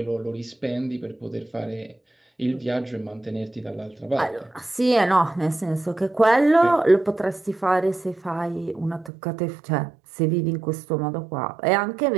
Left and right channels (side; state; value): left; drops out; at 9.1 s